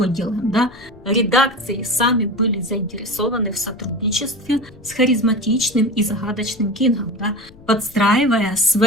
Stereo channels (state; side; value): noise; left; rumble, 23 dB below the sound